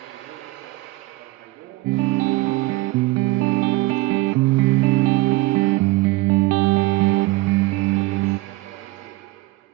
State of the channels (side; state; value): left; quieter; 19.9 dB